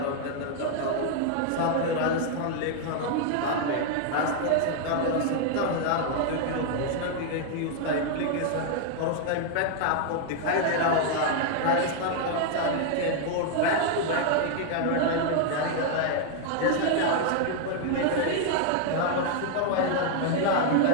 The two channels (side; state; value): both; different; correlation 0.00